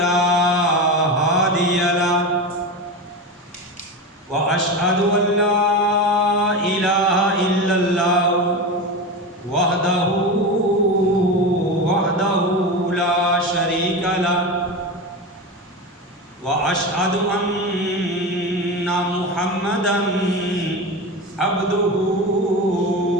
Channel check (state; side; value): normal; both; correlation 0.23